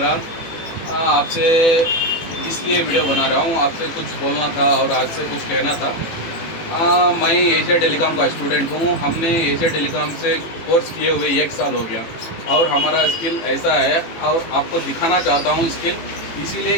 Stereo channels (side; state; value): right; late; 18 ms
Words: आपसे इसलिए वीडियो बना रहा हूँ, आपसे कुछ बोलना था और आपसे कुछ कहना था। मैं एशिया टेलीकॉम का स्टूडेंट हूँ। हमने एशिया टेलीकॉम से कोर्स किए हुए 1 साल हो गया और हमारा स्किल ऐसा है और आपको दिखाना चाहता हूँ स्किल, इसीलिए